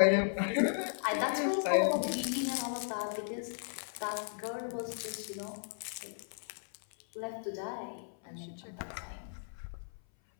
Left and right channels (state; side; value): silent; right; 54 dB below the other